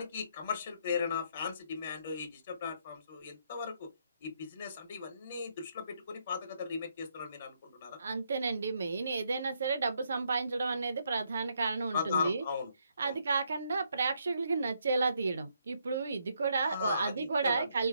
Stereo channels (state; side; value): inverted; both; correlation -0.74